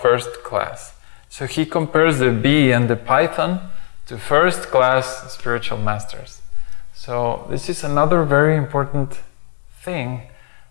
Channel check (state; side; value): silent; right; digital silence